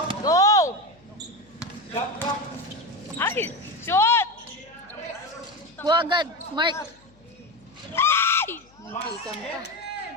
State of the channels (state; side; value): noise; left; hum, 30 dB below the sound